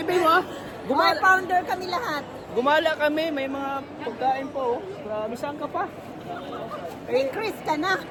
mo, Mga gumala, founder kami lahat. gumala kami, may mga pagkain po, oh. Grabe, saan ka pa? Ni Chris ka na.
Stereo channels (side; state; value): both; identical; correlation 1.00